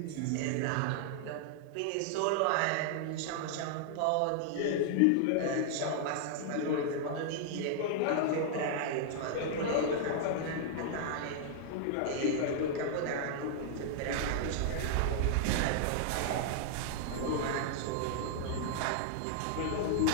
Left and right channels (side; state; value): both; different; correlation -0.01